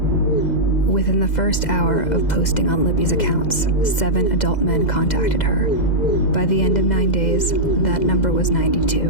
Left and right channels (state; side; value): late; right; 2.0 ms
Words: Within the first hour of posting on Libby's accounts, 7 adult men contacted her. By the end of 9 days, that number was